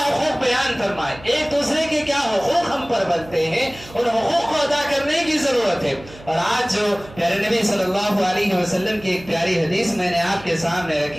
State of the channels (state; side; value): noise; right; hum, 20 dB below the sound